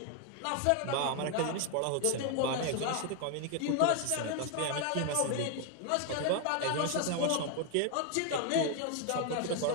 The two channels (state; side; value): different; both; correlation 0.01